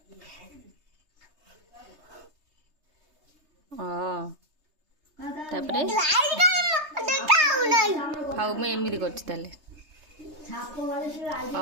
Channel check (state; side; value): late; left; 3.3 ms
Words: तापरे हाउ मैं एमती कर